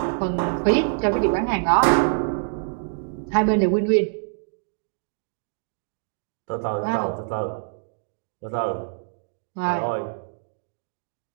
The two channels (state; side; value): silent; left; digital silence